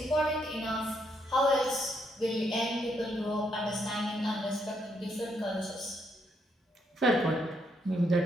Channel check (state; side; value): normal; both; correlation 0.75